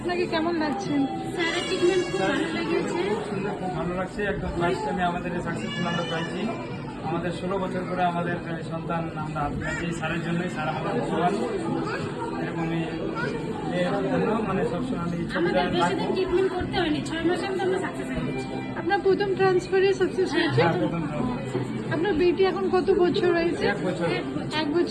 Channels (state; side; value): identical; both; correlation 1.00